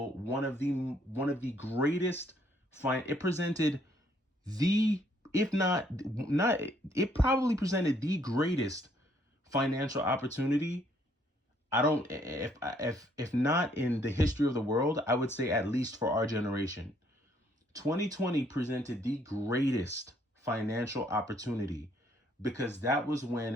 one of the greatest it presented the, if not it probably presented the greatest financial opportunity. I don't, if not in the history of the world, I would say at least for our generation. 2020 presented the greatest financial opportunity because that was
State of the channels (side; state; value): both; normal; correlation 0.67